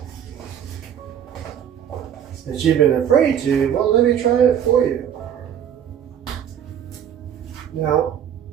that you've been afraid to, well, let me try it for you. Now,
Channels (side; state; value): left; quieter; 9.3 dB